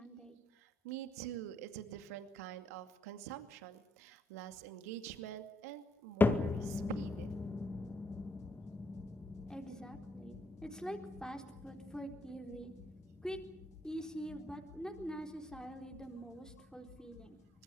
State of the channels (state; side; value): normal; both; correlation 0.75